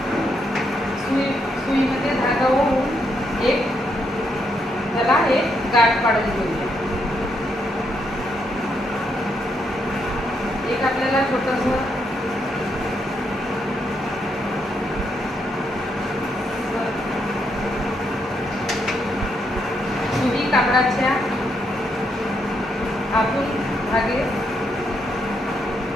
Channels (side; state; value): both; normal; correlation 0.78